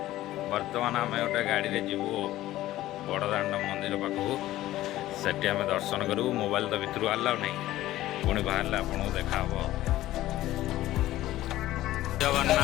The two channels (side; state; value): right; quieter; 15.2 dB